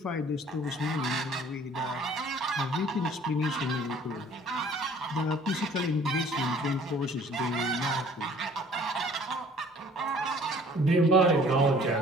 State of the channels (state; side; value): normal; both; correlation 0.53